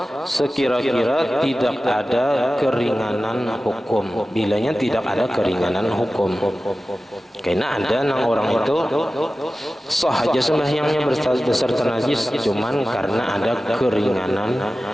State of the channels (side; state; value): both; normal; correlation 0.95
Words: sekira-kira tidak ada keringanan hukum. Bilanya tidak ada keringanan hukum, karena ada nang orang itu sah aja sembahyangnya beserta najis, cuman karena ada keringanan